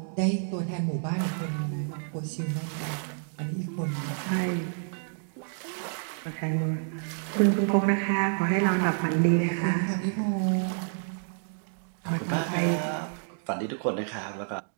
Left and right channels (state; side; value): silent; left; digital silence